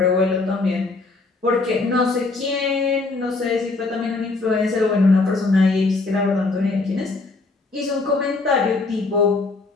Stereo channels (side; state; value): right; quieter; 3.6 dB